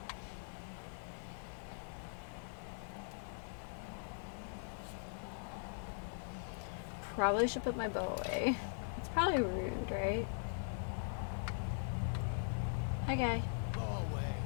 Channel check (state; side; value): silent; right; digital silence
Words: Probably should put my bow away. It's probably rude, right? Hi, guy. Go away.